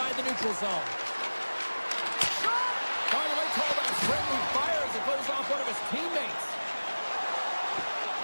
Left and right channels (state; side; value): inverted; both; correlation -1.00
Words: the neutral zone. Finally called a friendly fire as it goes off one of his teammates.